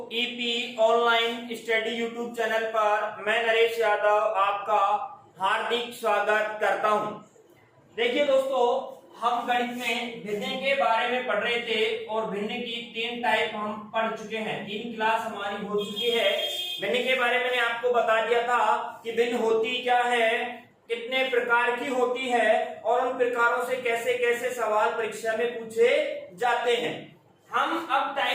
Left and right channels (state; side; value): identical; both; correlation 1.00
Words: EP online study YouTube channel पर मैं नरेश यादव आपका हार्दिक स्वागत करता हूं। देखिए दोस्तों, हम गणित में भिन्न के बारे में पढ़ रहे थे और भिन्न की 3 टाइप हम पढ़ चुके हैं। 3 क्लास हमारी हो चुकी है। भिन्न के बारे में मैंने आपको बता दिया था कि भिन्न होती क्या है, कितने प्रकार की होती है और उन प्रकारों से कैसे कैसे सवाल परीक्षा में पूछे जाते हैं। हम अब